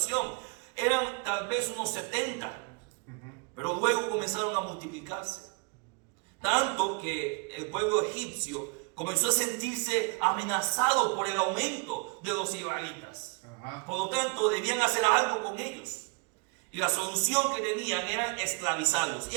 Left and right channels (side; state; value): left; quieter; 33.2 dB